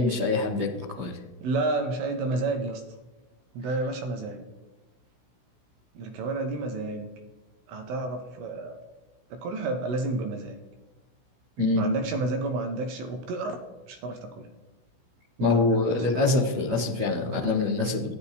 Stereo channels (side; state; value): left; late; 16 ms